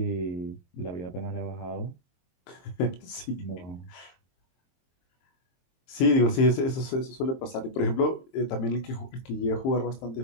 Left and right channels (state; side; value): late; right; 22 ms